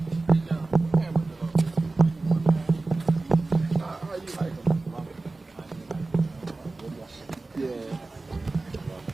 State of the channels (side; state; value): left; quieter; 3.4 dB